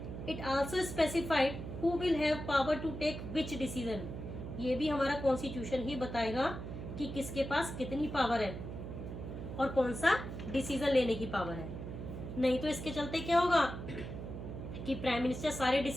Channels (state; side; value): noise; right; hum, 8 dB below the sound